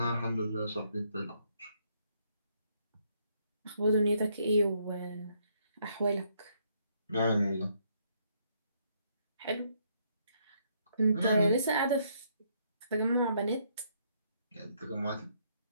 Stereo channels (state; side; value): inverted; both; correlation -0.71